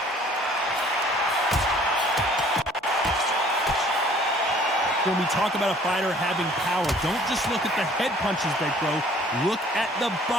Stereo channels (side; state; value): both; normal; correlation 0.55